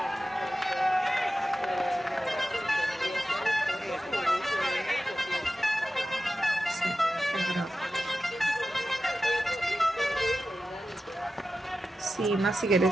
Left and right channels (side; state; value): both; normal; correlation 0.93